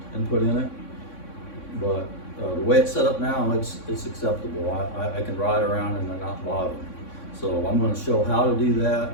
and put in it, but the way it's set up now, it's acceptable. I can ride around and not bother me. So I'm going to show how to do that.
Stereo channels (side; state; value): right; late; 3.6 ms